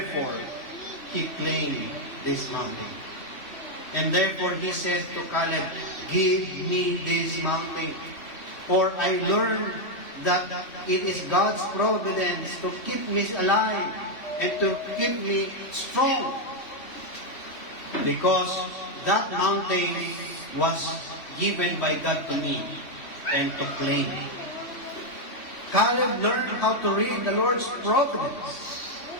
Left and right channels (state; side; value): late; right; 3.1 ms